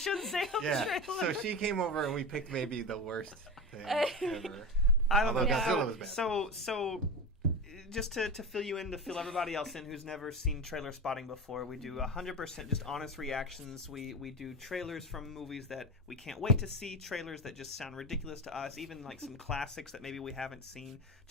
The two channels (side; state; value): both; normal; correlation 0.23